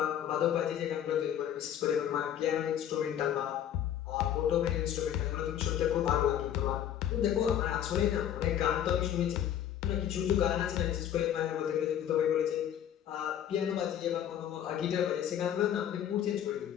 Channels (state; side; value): quieter; right; 10.3 dB